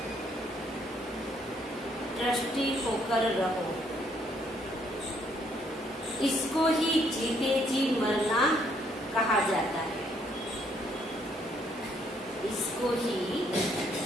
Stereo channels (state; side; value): normal; both; correlation 0.68